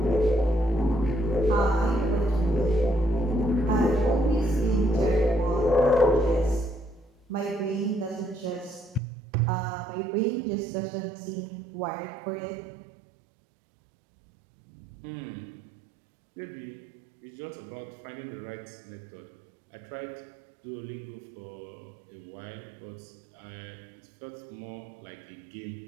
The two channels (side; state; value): left; drops out; at 9.0 s